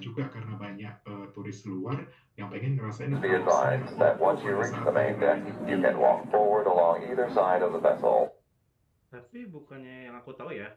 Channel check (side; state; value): both; identical; correlation 1.00